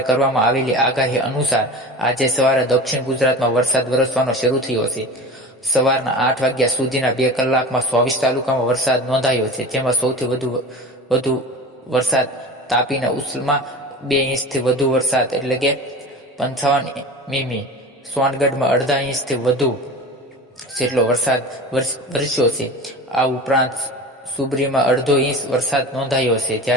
કરવામાં આવેલી આગાહી અનુસાર આજે સવારે દક્ષિણ ગુજરાતમાં વરસાદ વરસવાનો શરૂ થયો છે. સવારના 8 વાગ્યા સુધીના 2 કલાકમાં 24 તાલુકામાં વરસાદ નોંધાયો છે, જેમાં સૌથી વધુ વરસાદ તાપીના ઉસલમાં 2 ઇંચથી વધુ વરસાદ એટલે કે 55 મીમી, સોનગઢમાં અડધા ઇંચથી વધુ જેટલો વરસાદ વરસ્યો છે. આ ઉપરાંત સુબરીમાં અડધો ઇંચ વરસાદ નોંધાયો છે,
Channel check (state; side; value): normal; both; correlation 0.33